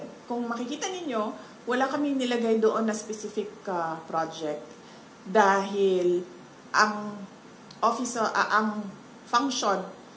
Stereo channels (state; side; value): identical; both; correlation 1.00